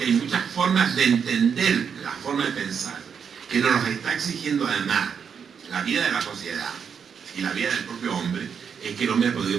hay muchas formas de entender la forma de pensar que nos los está exigiendo además la vida de la sociedad y la vida del propio hombre, es que el hombre ha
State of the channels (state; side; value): quieter; left; 6.9 dB